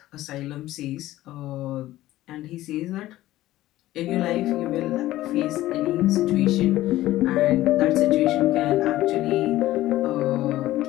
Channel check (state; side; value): quieter; right; 15.6 dB